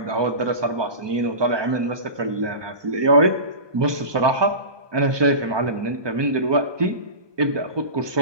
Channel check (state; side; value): late; left; 1.2 ms